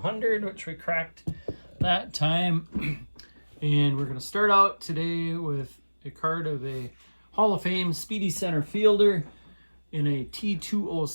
which we cracked that time. And we're going to start out today with a card of a Hall of Fame speedy center fielder in a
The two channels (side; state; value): both; inverted; correlation -1.00